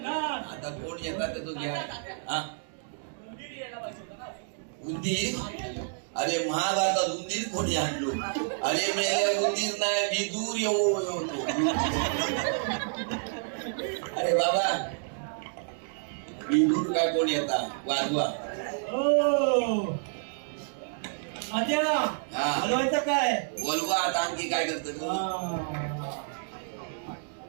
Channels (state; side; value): silent; left; digital silence